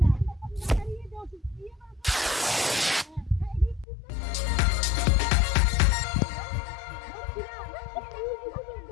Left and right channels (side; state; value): right; drops out; at 3.9 s